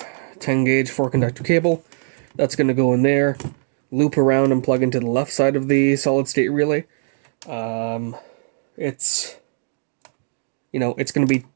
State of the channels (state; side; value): silent; left; 61 dB below the other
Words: 10 gauge 4-conductor cable that's going to go in there, loop around and plug into the left side of the solid state relay. It's going to be